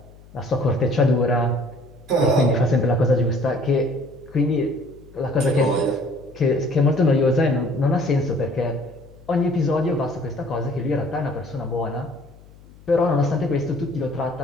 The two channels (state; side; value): noise; left; hum, 23 dB below the sound